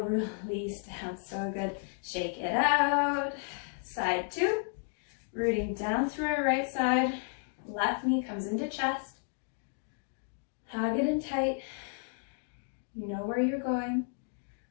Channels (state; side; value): silent; right; 56 dB below the other